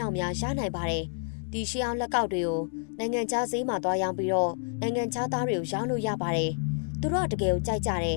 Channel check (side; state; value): right; silent; digital silence